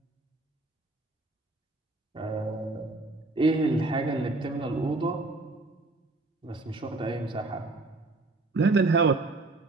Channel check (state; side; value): quieter; left; 3.2 dB